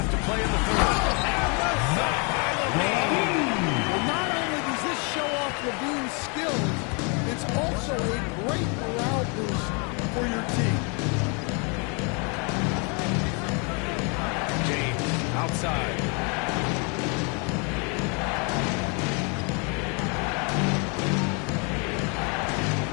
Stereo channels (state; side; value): quieter; right; 34.4 dB